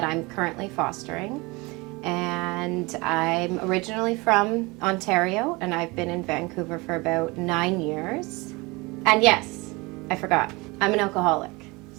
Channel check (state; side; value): quieter; left; 24.9 dB